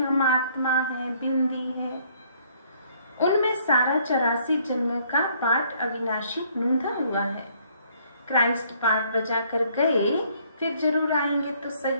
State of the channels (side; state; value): both; inverted; correlation -0.63